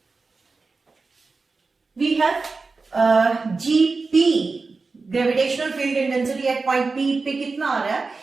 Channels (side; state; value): left; quieter; 4.1 dB